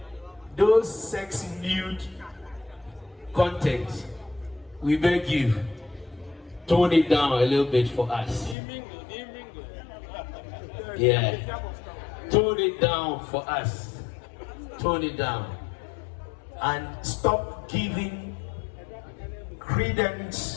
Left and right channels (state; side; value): drops out; right; at 8.6 s